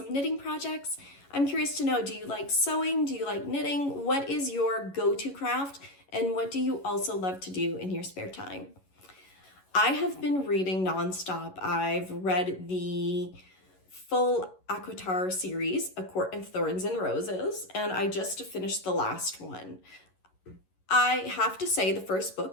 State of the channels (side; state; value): right; late; 11 ms